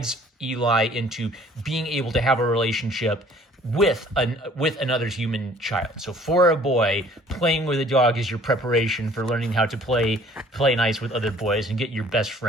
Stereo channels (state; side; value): normal; both; correlation 0.55